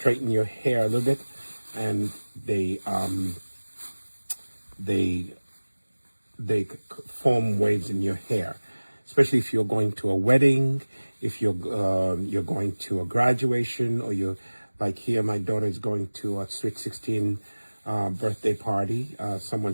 your hair a little bit, and they form waves in your hair, especially if you're going to a wedding, if you're going to a graduation, or you're like here. My daughter is going to a sweet 16 birthday party.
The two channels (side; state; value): both; inverted; correlation -1.00